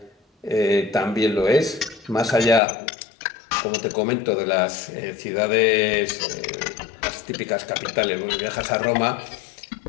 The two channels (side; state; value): right; drops out; at 2.6 s